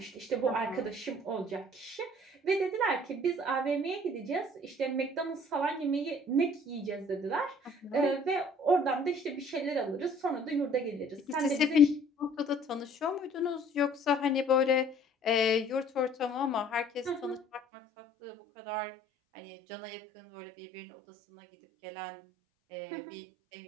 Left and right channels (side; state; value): left; drops out; at 17.6 s